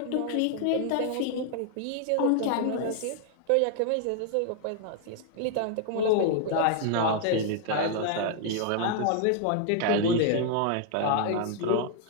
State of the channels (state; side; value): different; both; correlation 0.00